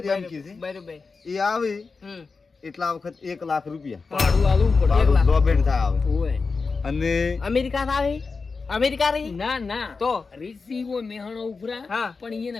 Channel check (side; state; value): right; quieter; 4.5 dB